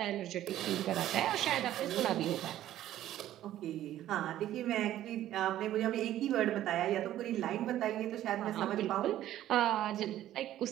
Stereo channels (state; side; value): quieter; left; 12.9 dB